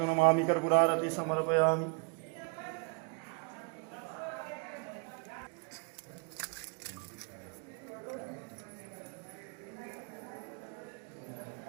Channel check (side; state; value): left; quieter; 37.3 dB